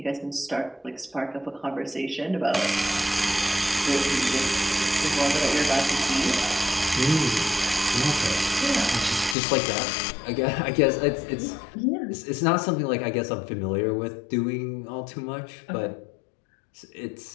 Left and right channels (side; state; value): right; drops out; at 9.3 s